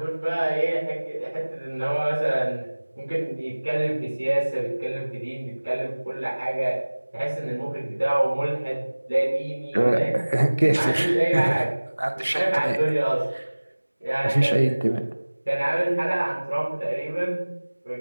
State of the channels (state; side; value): inverted; both; correlation -1.00